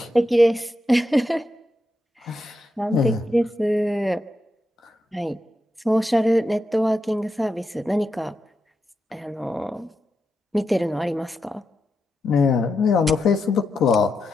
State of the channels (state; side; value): normal; both; correlation 0.86